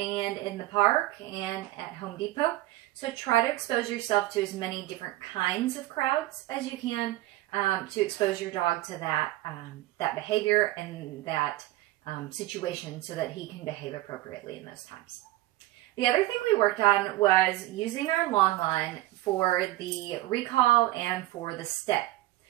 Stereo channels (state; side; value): quieter; left; 17.1 dB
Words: in the park and at Home Depot. So try to expose yourself to as many different kinds of crowds as you can to expose your dog to that, that behavior and that situation so that he can behave appropriately in those times. The other thing we worked on was using our long line for the recall and for the stay.